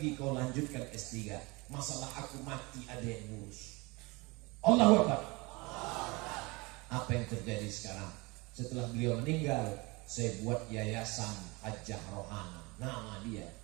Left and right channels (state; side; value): quieter; left; 25.5 dB